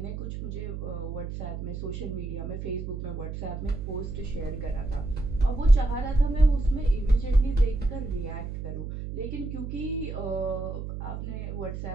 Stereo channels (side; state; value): right; noise; hum, 6 dB below the sound